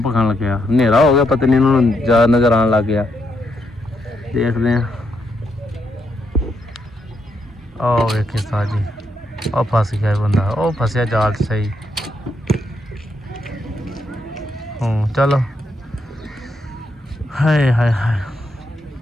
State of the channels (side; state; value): both; normal; correlation 0.79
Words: खान लग गया। हनेरा हो गया, पता नहीं इन्होंने ज़्यादा नज़र आने लग गया। देखते हैं। ओ वेखे उस्ताद जी, ओ फस गया बंदा। ओ फसया जाल सही। चलो हाय हाय हाय।